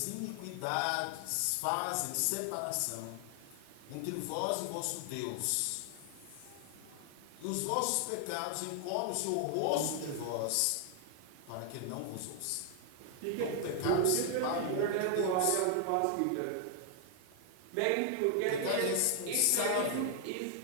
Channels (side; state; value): both; different; correlation 0.00